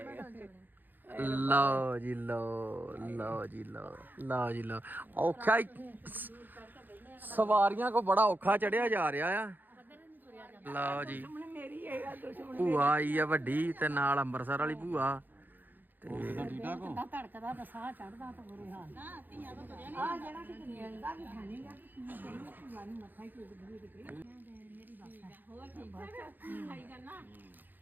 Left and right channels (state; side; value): late; left; 0.088 ms